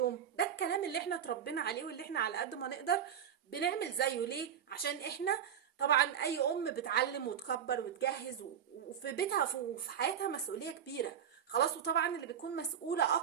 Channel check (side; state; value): left; quieter; 8.7 dB